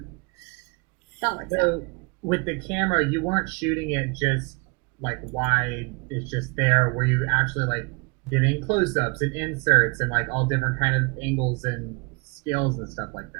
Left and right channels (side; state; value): left; quieter; 29.6 dB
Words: that works out. With the camera, you weren't shooting it just wide, it's just there. Were you actually getting close-ups and inserts and all different kind of angles and scales and stuff like